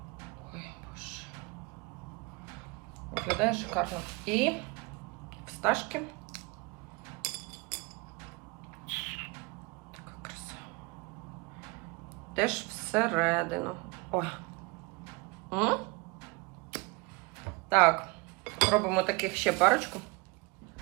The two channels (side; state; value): left; quieter; 26.3 dB